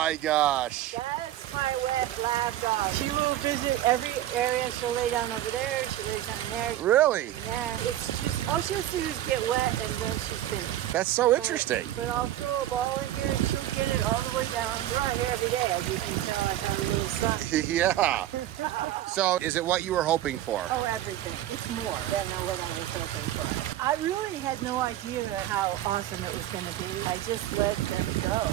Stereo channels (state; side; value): quieter; left; 13.1 dB